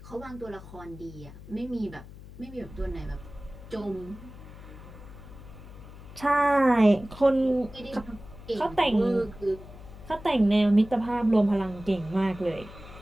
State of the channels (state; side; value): noise; left; hum, 16 dB below the sound